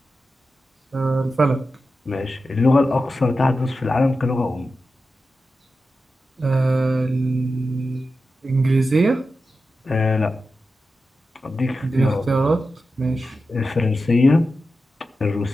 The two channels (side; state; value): both; normal; correlation 0.91